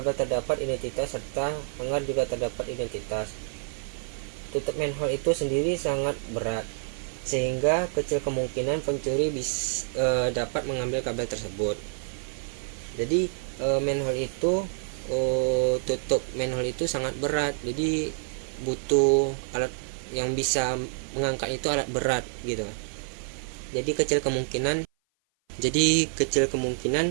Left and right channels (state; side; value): silent; left; 55 dB below the other